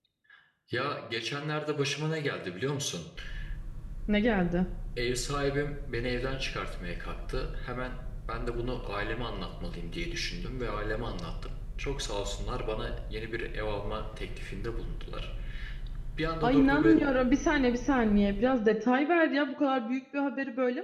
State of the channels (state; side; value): identical; both; correlation 1.00